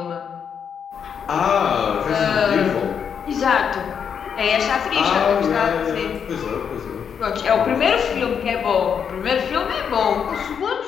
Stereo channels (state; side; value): quieter; right; 7.3 dB